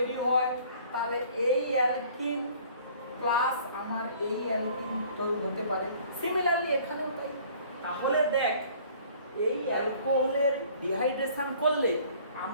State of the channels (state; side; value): inverted; both; correlation -0.53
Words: হয়, তাহলে এই অ্যালকিন প্লাস আমার এই অ্যালকিন তৈরি হতে পারে। সিমিলারলি এখানেও তাই। তাহলে দেখ, এই অ্যালকোহলের ডিহাইড্রেশন করলে